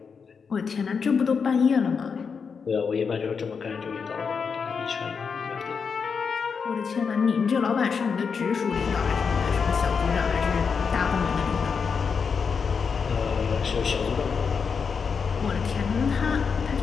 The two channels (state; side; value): quieter; right; 5.8 dB